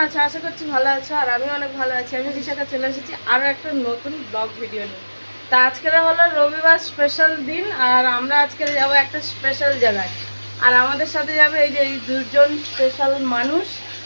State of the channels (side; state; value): both; inverted; correlation -1.00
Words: আছে? আশা করছি ভালো আছো, আর আমি অনেক ভালো আছি। আমি বিশাখা চলে এসেছি আরও একটা নতুন ব্লগ ভিডিও নিয়ে। তা আজকের হলো রবিবার স্পেশাল দিন, আর আমরা আজকে যাবো একটা স্পেশাল জায়গায়। আর আমাদের সাথে যাবে এই যে এই দুজন স্পেশাল মানুষ।